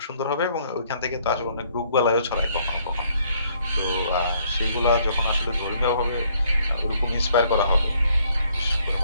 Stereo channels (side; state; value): both; inverted; correlation -0.66